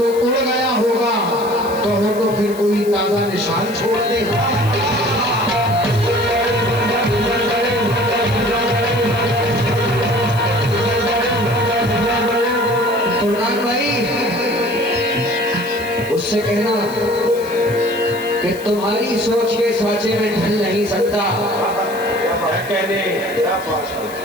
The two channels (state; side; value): noise; left; hiss, 18 dB below the sound